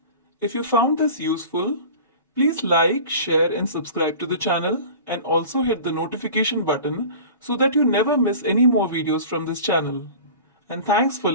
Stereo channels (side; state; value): both; inverted; correlation -0.39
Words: if you found this useful, please like, share and subscribe to the channel and also hit the notification button so that you never miss any more videos from this channel. And thanks for